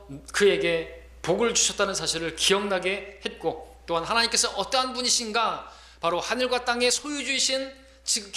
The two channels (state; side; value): identical; both; correlation 1.00